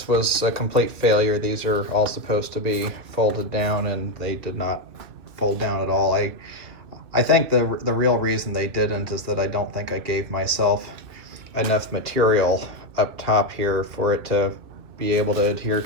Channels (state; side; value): late; left; 2.3 ms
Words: was a complete failure. These are all supposed to be folded down, and they did not fold down at all. I think the real reason they didn't is that I don't think I gave myself enough material up top here for it to be able to adhere,